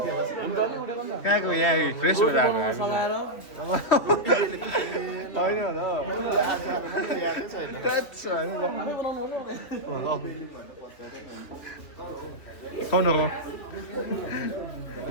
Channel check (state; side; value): late; right; 3.1 ms